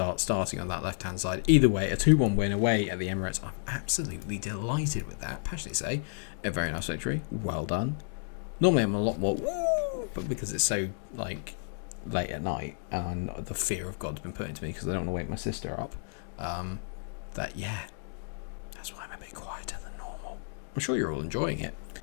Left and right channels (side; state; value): right; silent; digital silence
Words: on that left-hand side. Either way, a 2-1 win away at the Emirates. I'm absolutely delighted with that. Passionately say, a very nice victory. Well done. Normally I'm a lot more, but because it's so like late at night and the fear of God's been put into me because I don't want to wake my sister up. That's why I'm a bit quieter than normal. I'm sure you're all enjoying it.